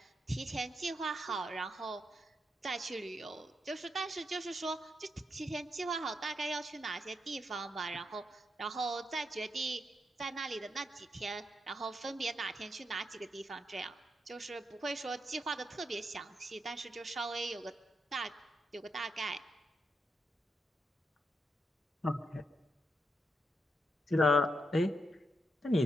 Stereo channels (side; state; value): both; normal; correlation 0.82